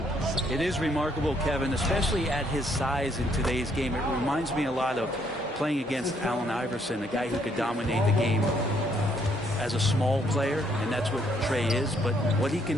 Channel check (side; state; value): both; normal; correlation 0.69